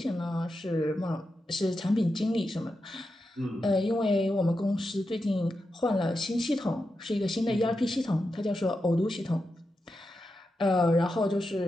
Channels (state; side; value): normal; both; correlation 0.88